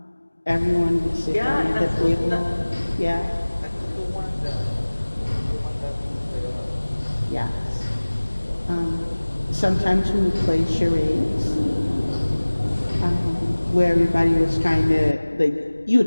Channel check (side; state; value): both; inverted; correlation -1.00